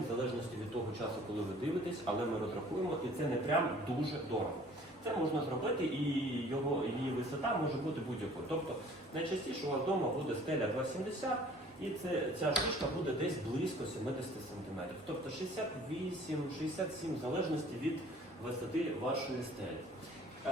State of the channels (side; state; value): both; normal; correlation 0.52